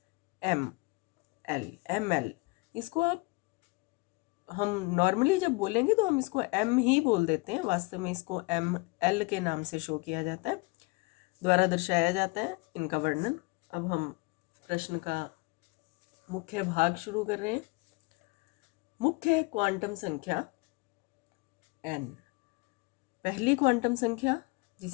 एम एल, इसको आप हम नॉर्मली जब बोलेंगे तो हम इसको एम ही बोल देते हैं, वास्तव में इसको एम, एल के नाम से शो किया जाता है, द्वारा दर्शाया जाता है इनका वर्णन। अब हम प्रश्न का मुख्य भाग शुरू कर रहे हैं। मुख्य क्वांटम संख्या एन। पहली क्वांटम संख्या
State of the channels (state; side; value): quieter; right; 26.8 dB